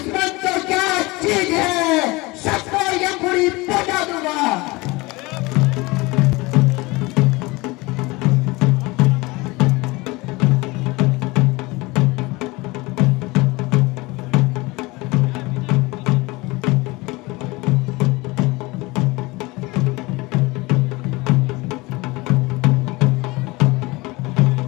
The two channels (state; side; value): quieter; right; 23.1 dB